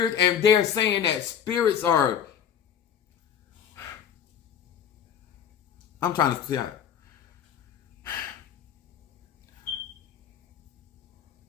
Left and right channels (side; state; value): right; quieter; 8.8 dB